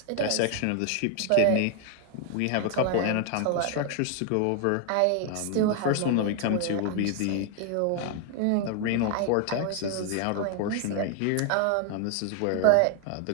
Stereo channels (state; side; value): different; both; correlation 0.00